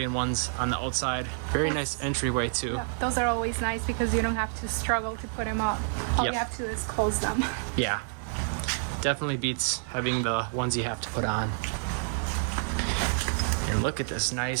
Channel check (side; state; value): left; silent; digital silence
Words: ones on the outside. Very nice entryway too. Yeah, those are always nice because you don't have to struggle to put them up. All you have to do is close them. Yeah, definitely beats having the ones you have to put on. And look at this